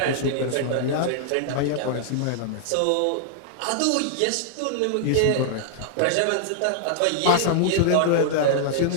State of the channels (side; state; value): both; different; correlation -0.01